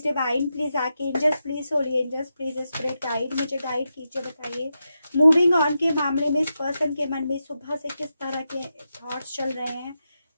divine please, archangels please, holy angels please, spirit guide, मुझे गाइड कीजिए, बताइए मूविंग ऑन के मामले में इस पर्सन के मन में सुबह से किस तरह के थॉट्स चल रहे हैं।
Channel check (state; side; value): inverted; both; correlation -0.88